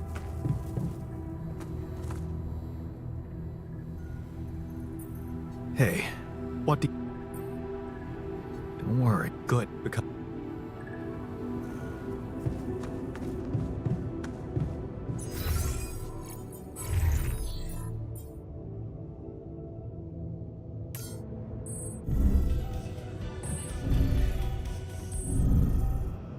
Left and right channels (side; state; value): both; identical; correlation 1.00